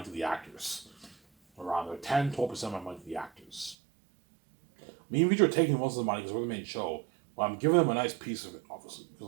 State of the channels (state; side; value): drops out; left; at 3.8 s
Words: to the actors, or rather 10-12% of my money to the actors. Me and VJ are taking most of the money because we're the main show, but I'm giving them a nice piece of it, obviously,